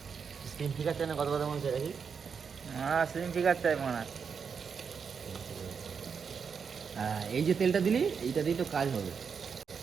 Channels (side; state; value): left; quieter; 6.2 dB